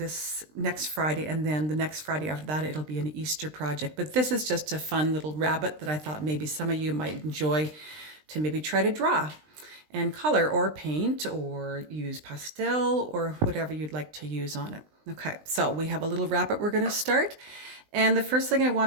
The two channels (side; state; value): left; late; 20 ms